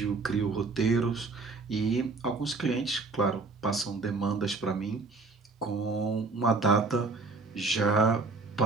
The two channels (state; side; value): quieter; left; 3.8 dB